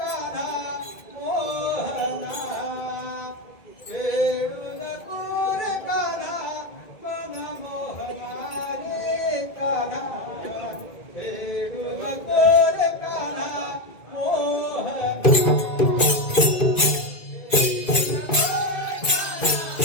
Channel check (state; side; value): late; right; 2.1 ms